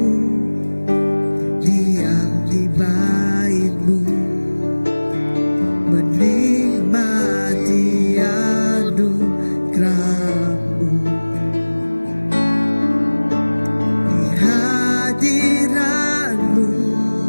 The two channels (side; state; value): both; inverted; correlation -1.00